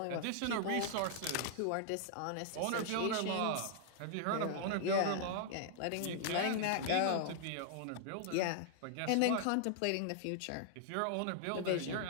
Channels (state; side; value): different; both; correlation -0.01